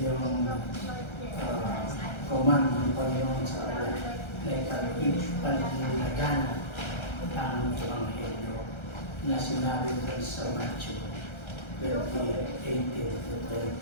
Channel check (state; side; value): late; right; 1.3 ms